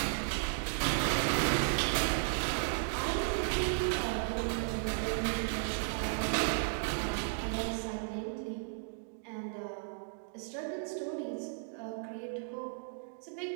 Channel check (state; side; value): silent; left; digital silence